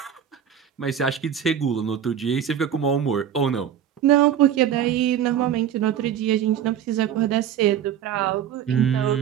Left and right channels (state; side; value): quieter; left; 9.3 dB